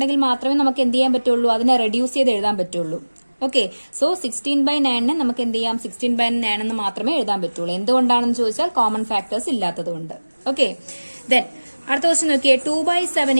മാത്രമേ നമുക്ക് എന്ത് ചെയ്യാൻ പറ്റുള്ളൂ, അതിനെ റെഡ്യൂസ് ചെയ്ത് എഴുതാൻ പറ്റുള്ളൂ. ഓക്കെ. സോ 16/9 നമുക്ക് എന്ത് ചെയ്യാം, 16/9 എന്ന് മാത്രമേ എഴുതാൻ പറ്റുള്ളൂ. എന്തുകൊണ്ടാണെന്ന് ചോദിച്ചാൽ കോമൺ ഫാക്ടേഴ്സ് ഇല്ലാത്തത് കൊണ്ട്. ഓക്കെ. ദെൻ അടുത്ത ക്വസ്റ്റ്യൻ നോക്കിയേ, 2/7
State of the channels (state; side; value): inverted; both; correlation -1.00